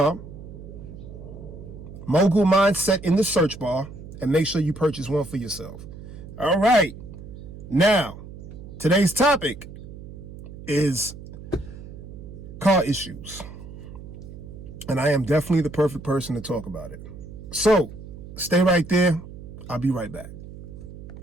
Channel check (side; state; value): right; noise; hum, 14 dB below the sound